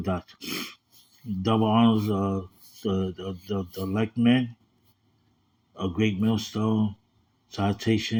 Double honors the elect men, a great millstone,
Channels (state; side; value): identical; both; correlation 1.00